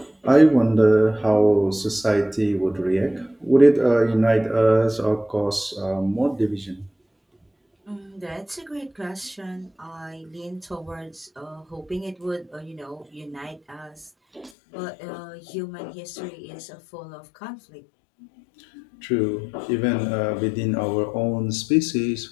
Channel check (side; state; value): right; drops out; at 14.5 s